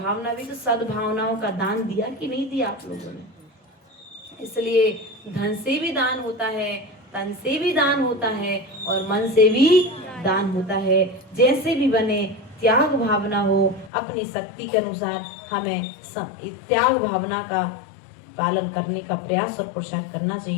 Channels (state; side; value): drops out; right; at 13.9 s